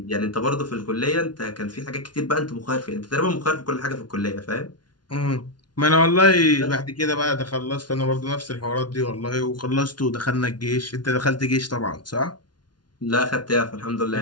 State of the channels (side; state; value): right; late; 0.70 ms